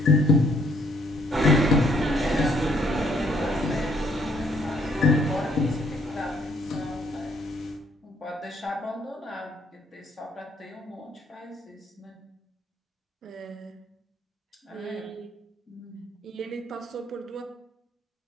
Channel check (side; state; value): both; normal; correlation 0.66